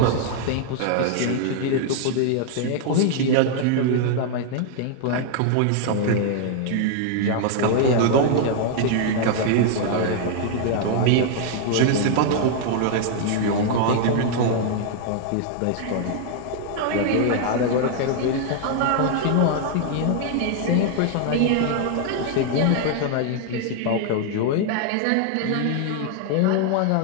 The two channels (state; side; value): different; both; correlation 0.00